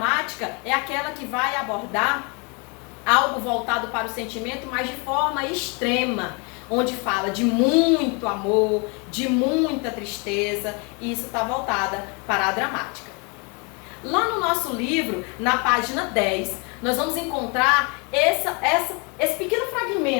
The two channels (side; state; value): right; quieter; 32.4 dB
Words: é aquela que vai abordar algo voltado para o sentimento, mas de forma extrema, onde fala de muito amor, de muita tristeza, e isso está voltada para a dramática. Lá no nosso livro, na página 10, nós vamos encontrar esse pequeno